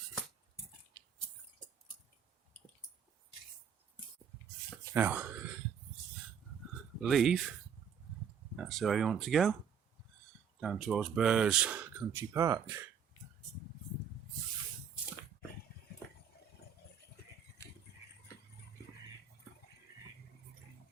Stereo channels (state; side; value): quieter; left; 7.5 dB